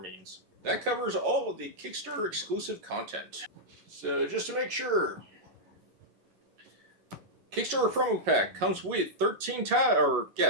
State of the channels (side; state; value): left; late; 11 ms